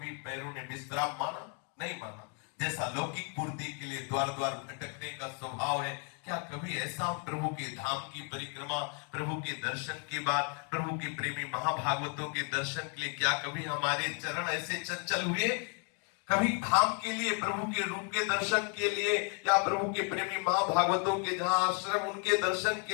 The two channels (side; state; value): right; quieter; 39.7 dB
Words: पैरों ने विश्राम माना नहीं माना। जैसा लौकिक पूर्ति के लिए द्वार द्वार भटकने का स्वभाव है, क्या कभी ऐसा प्रभु के धाम की परिक्रमा, प्रभु के दर्शन के बाद, प्रभु के प्रेमी महाभागवतों के दर्शन के लिए क्या कभी हमारे चरण ऐसे चंचल हुए? कभी धाम के लिए, प्रभु के रूप के दर्शन के लिए, या प्रभु के प्रेमी महाभागवतों के जहां आश्रम, उनके दर्शन